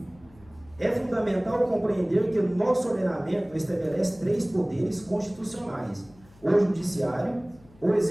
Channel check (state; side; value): noise; left; hum, 26 dB below the sound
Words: É fundamental compreender que o nosso ordenamento estabelece 3 poderes constitucionais: o judiciário, o